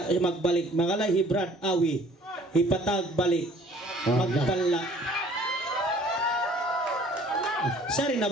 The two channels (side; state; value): both; normal; correlation 0.54